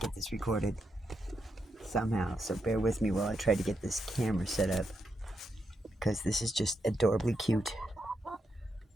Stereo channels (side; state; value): both; normal; correlation 0.83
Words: this recorded somehow, so bear with me while I try to get this camera set up, because this is just adorably cute.